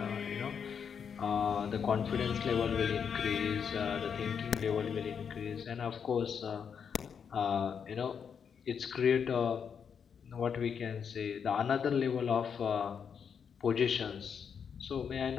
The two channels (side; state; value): right; quieter; 7.0 dB